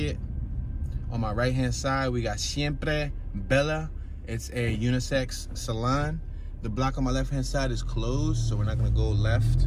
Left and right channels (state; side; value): identical; both; correlation 1.00